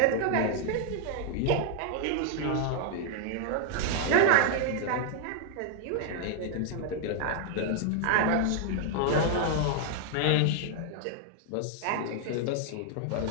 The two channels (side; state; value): both; different; correlation 0.00